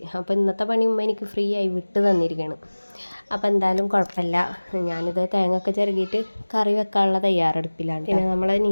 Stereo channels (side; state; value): both; inverted; correlation -1.00